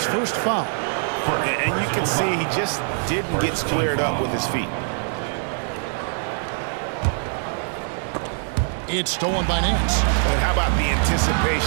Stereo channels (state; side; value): silent; left; 63 dB below the other